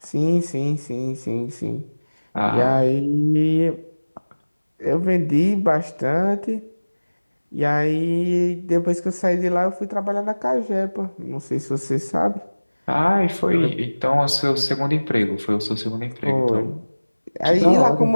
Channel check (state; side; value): inverted; both; correlation -1.00